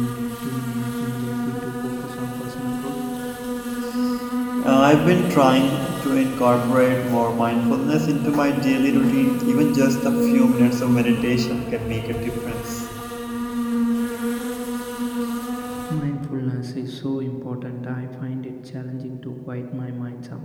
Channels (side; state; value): both; identical; correlation 1.00